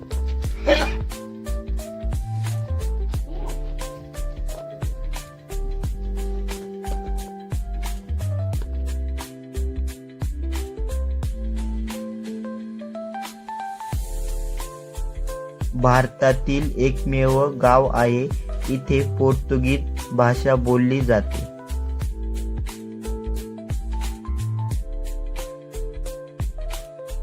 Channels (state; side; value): identical; both; correlation 1.00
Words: भारतातील एकमेव गाव आहे इथे पोर्तुगीज भाषा बोलली जाते।